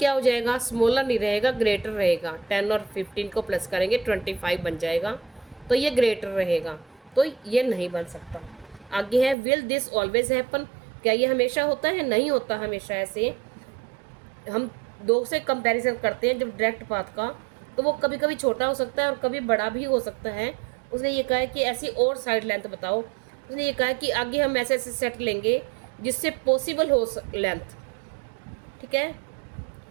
हो जाएगा, स्मॉलर नहीं रहेगा, ग्रेटर रहेगा। 10 और 15 को प्लस करेंगे 25 बन जाएगा, तो ये ग्रेटर रहेगा, तो ये नहीं बन सकता। आगे है विल दिस ऑलवेज हैपन, क्या ये हमेशा होता है? नहीं होता हमेशा ऐसे। हम दो से कंपैरिजन करते हैं जब डायरेक्ट पाथ का, तो वो कभी कभी छोटा हो सकता है और कभी बड़ा भी हो सकता है। उसने ये कहा है कि ऐसी और साइड लेंथ बताओ। उसने ये कहा है कि आगे हम ऐसे ऐसे सेट लेंगे जिससे पॉसिबल हो लेंथ। ठीक है,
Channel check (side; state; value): left; drops out; at 9.3 s